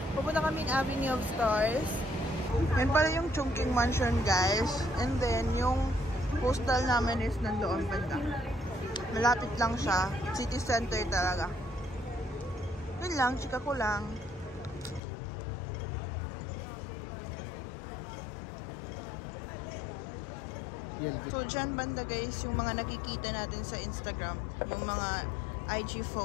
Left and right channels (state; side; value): drops out; right; at 15.0 s